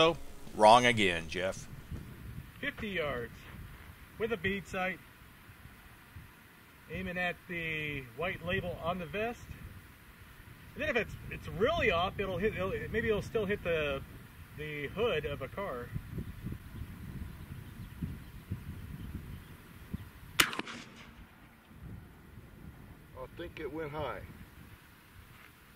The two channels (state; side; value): identical; both; correlation 1.00